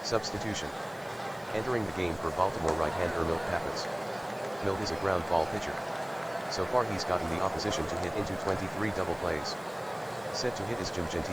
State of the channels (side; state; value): left; noise; hiss, 25 dB below the sound